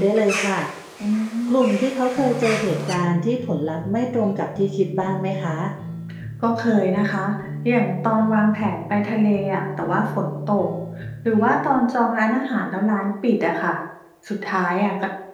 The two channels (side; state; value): both; identical; correlation 1.00